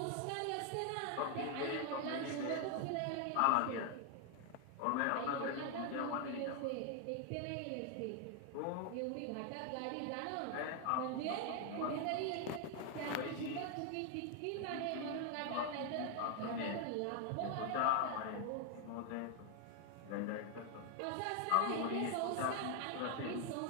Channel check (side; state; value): both; different; correlation 0.00